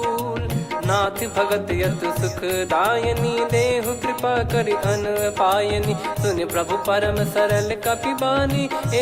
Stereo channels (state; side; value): identical; both; correlation 1.00